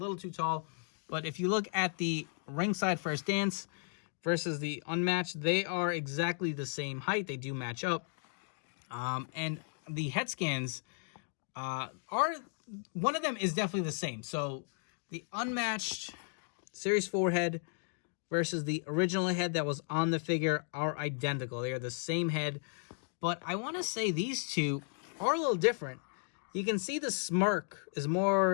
too tall. But if you look at the Ringside First Dance versus the Unmatched, they are exactly the same height. They do match up. And the head scans are, one of them is definitely the same. So the Unmatched Series 4 head versus the original head that was on the figure are identical. They are the same head. But I want to say these two are a little different. You can see the smirk is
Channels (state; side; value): silent; right; 55 dB below the other